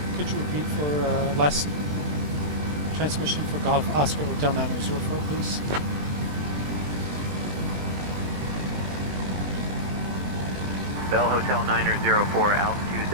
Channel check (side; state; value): left; late; 20 ms